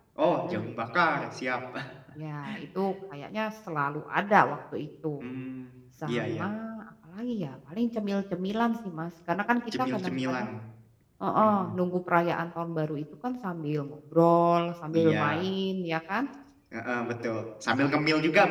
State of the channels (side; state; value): both; identical; correlation 1.00